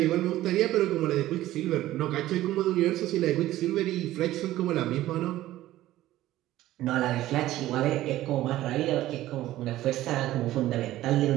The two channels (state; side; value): quieter; left; 15.0 dB